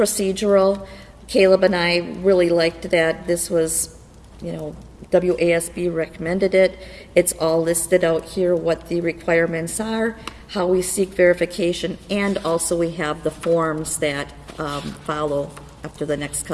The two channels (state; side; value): identical; both; correlation 1.00